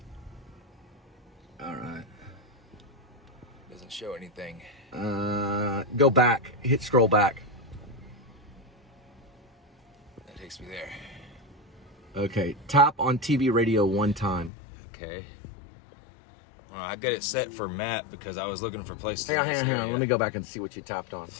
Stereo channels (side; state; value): right; drops out; at 14.5 s